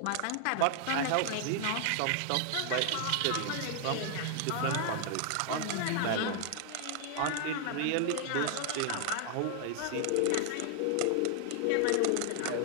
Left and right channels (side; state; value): both; different; correlation 0.00